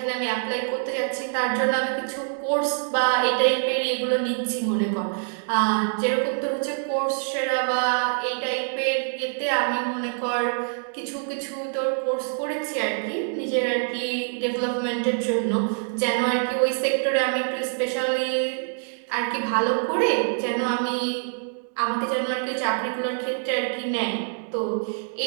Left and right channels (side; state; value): left; silent; digital silence